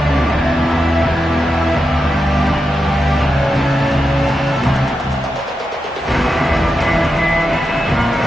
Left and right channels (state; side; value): normal; both; correlation 0.88